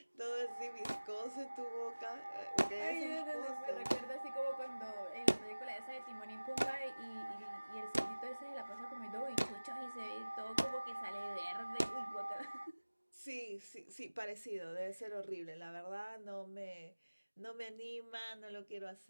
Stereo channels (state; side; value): inverted; both; correlation -1.00